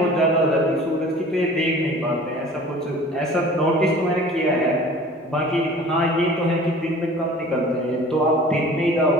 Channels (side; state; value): both; normal; correlation 0.45